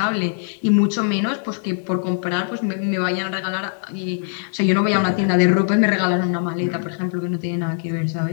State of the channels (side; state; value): right; silent; digital silence